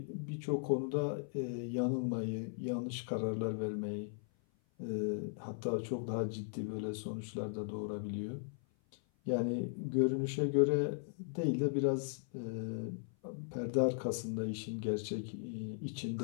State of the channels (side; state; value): right; silent; 53 dB below the other